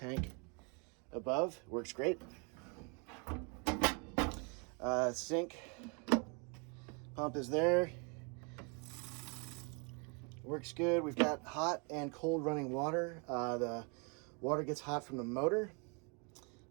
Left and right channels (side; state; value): left; quieter; 34.3 dB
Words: above, works great. Sink pump is there, works good. We've got hot and cold running water. The water gets hot from the motor,